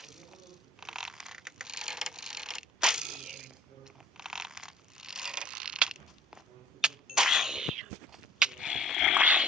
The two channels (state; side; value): normal; both; correlation 0.49